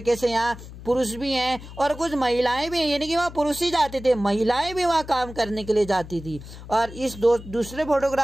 से यहाँ पुरुष भी हैं और कुछ महिलाएं भी हैं, यानी कि वहाँ पुरुष ही जाते थे, महिलाएं भी वहाँ काम करने के लिए जाती थी। और इस दूसरे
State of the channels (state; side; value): noise; left; hum, 15 dB below the sound